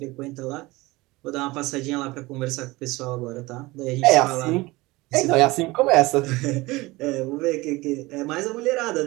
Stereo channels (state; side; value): quieter; left; 21.3 dB